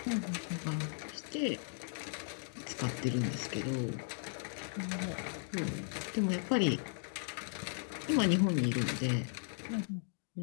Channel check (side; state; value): right; silent; digital silence